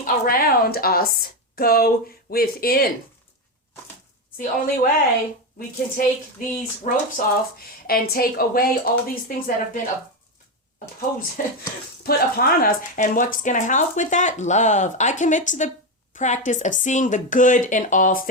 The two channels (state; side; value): normal; both; correlation 0.11